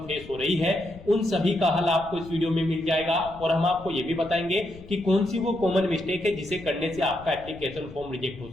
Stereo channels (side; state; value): left; noise; rumble, 18 dB below the sound